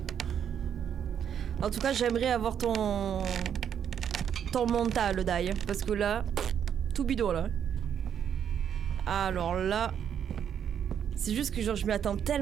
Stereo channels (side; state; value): left; quieter; 8.6 dB